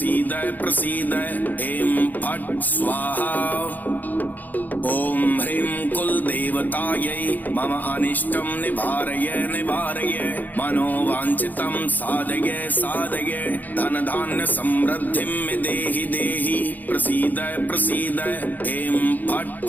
प्रसीद ऐं फट् स्वाहा। ओम ह्रीं कुल देवतायै मम अनिष्टं निवारय निवारय मनोवांछितं साधय साधय धन धान्य समृद्धिं देहि देहि प्रसीद प्रसीद ऐं फट्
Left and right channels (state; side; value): late; right; 0.084 ms